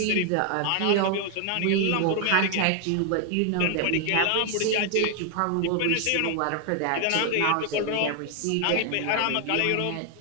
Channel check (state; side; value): different; both; correlation 0.00